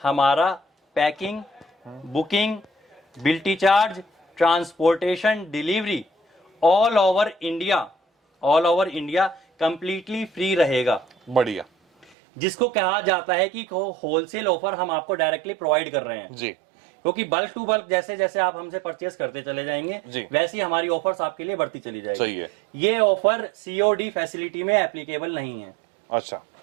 हमारा पैकिंग, बुकिंग, बिल्टी charge, transportation, delivery all over India completely free रहेगा। बढ़िया जिसको कहा जाता है कि होलसेल ऑफर हम आपको डायरेक्टली प्रोवाइड कर रहे हैं जी। क्योंकि बल्क टू बल्क जैसे जैसे आप हमसे परचेस करते चले जाएंगे वैसी हमारी ऑफर्स आपके लिए बढ़ती चली जाएगी। सही है। ये ऑफर COD फैसिलिटी में एप्लीकेबल नहीं है। अच्छा,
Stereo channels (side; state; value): left; drops out; at 12.1 s